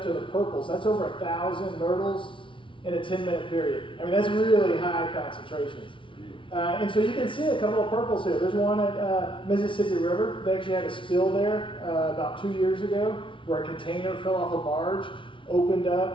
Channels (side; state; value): right; late; 0.25 ms